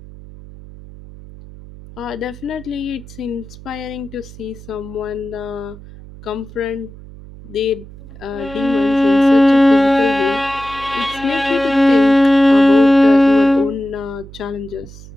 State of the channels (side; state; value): right; noise; hum, 18 dB below the sound